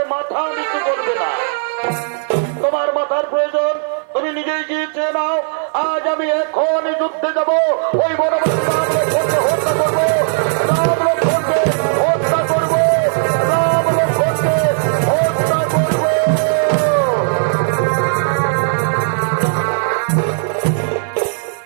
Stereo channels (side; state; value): left; silent; 56 dB below the other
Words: মাথা নিচু করবে না তোমার মাথার প্রয়োজন তুমি নিজেই গিয়ে চেয়ে নাও আজ আমি এখনই যুদ্ধে যাব ওই বনবাসী হত্যা করবো রাম লক্ষ্মণকে হত্যা করবো রাম লক্ষ্মণকে হত্যা করবো